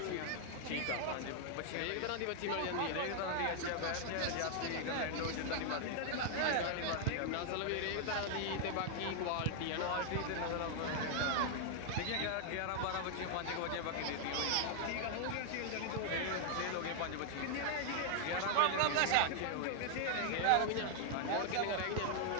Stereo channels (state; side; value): different; both; correlation 0.00